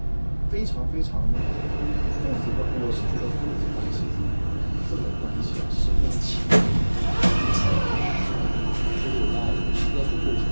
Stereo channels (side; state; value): both; inverted; correlation -1.00